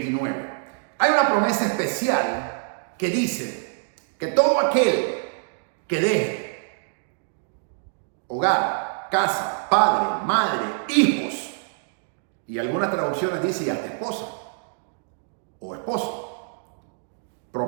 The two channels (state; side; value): silent; left; digital silence